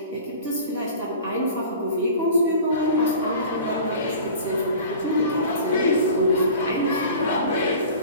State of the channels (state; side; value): inverted; both; correlation -0.41